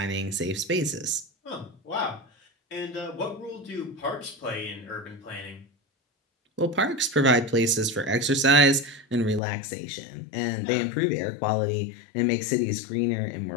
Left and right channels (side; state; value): right; drops out; at 9.4 s